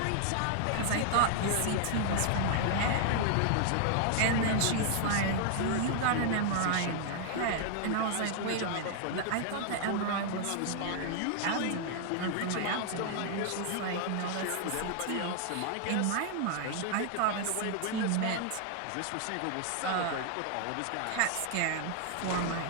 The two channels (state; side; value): different; both; correlation 0.00